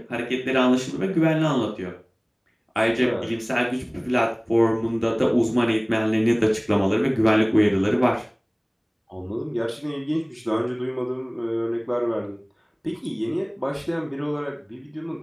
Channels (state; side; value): identical; both; correlation 1.00